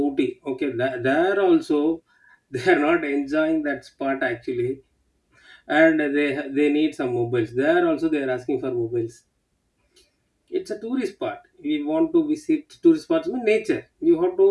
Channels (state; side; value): identical; both; correlation 1.00